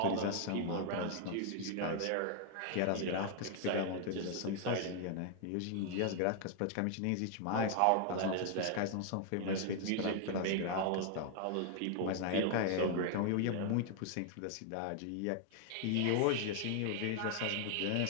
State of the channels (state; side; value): different; both; correlation 0.00